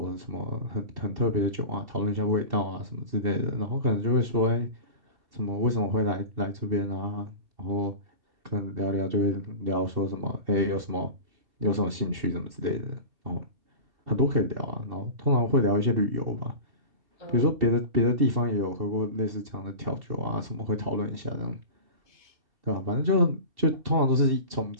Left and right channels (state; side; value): late; left; 2.7 ms